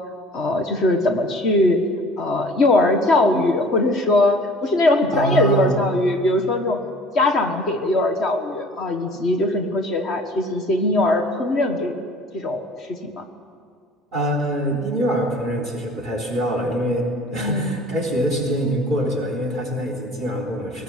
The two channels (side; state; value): both; normal; correlation 0.49